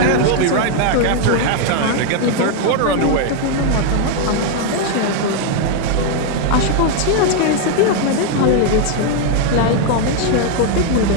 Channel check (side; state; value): both; different; correlation 0.00